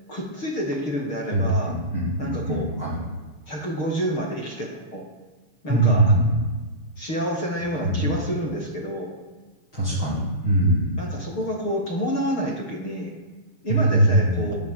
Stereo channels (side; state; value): right; late; 6.6 ms